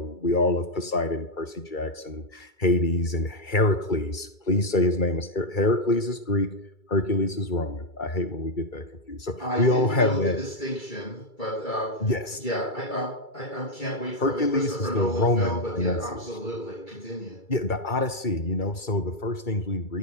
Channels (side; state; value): right; late; 2.3 ms